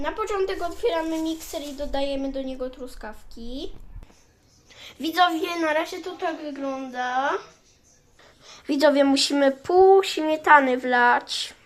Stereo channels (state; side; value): identical; both; correlation 1.00